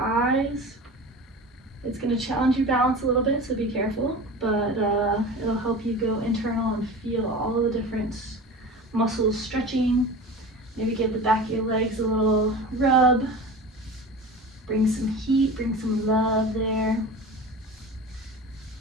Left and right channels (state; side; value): normal; both; correlation 0.34